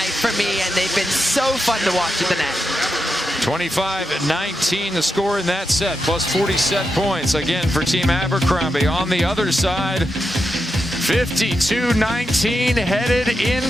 for me, and they've been so fun to watch at the net. 25-19 the score in that set, plus 40 set points again for Team Abercrombie. On the other side, 52-19 headed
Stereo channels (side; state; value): both; normal; correlation 0.87